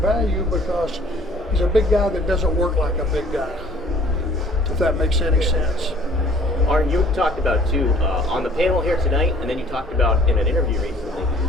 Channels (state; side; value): normal; both; correlation 0.54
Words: because he's a big guy that doesn't work like a big guy, if that makes any sense. Arn, you talked about too on the panel here tonight, and then you talked about in an interview recently